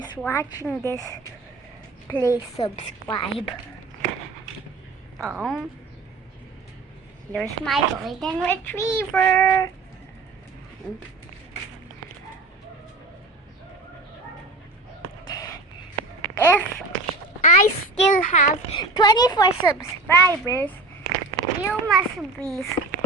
watching this, please subscribe. Oh, there's my golden retriever. If I still have 24 subscribers, you must be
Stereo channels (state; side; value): quieter; left; 3.3 dB